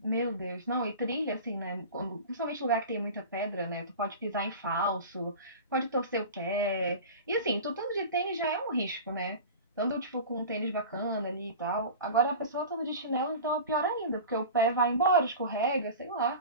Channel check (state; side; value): inverted; both; correlation -0.34